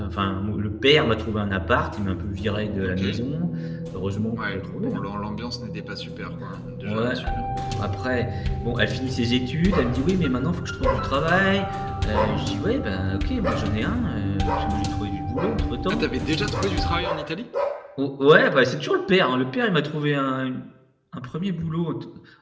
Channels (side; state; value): both; identical; correlation 1.00